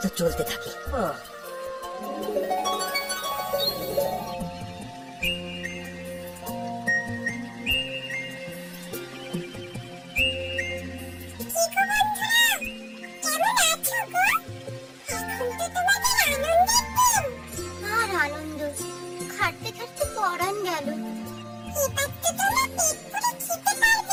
চলতে থাকি। ও, আর আনন্দ, খাটতে খাটতে পরান গেল। এবার তো তোমরা পেট পুরে খেতে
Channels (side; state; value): both; identical; correlation 1.00